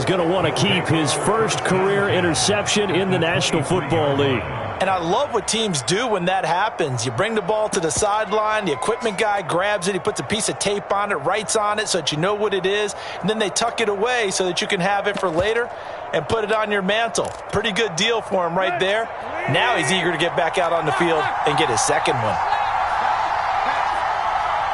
going to want to keep, his first career interception in the National Football League. And I love what teams do when that happens. You bring the ball to the sideline, the equipment guy grabs it, he puts a piece of tape on it, writes on it so that you know what it is, and then they tuck it away so that you can have it for later and put it on your mantle. Pretty good deal for him right there. Now he's eager to get back out on the field and get his second one.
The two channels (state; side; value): identical; both; correlation 1.00